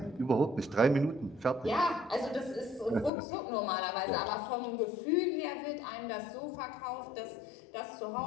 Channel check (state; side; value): drops out; right; at 3.1 s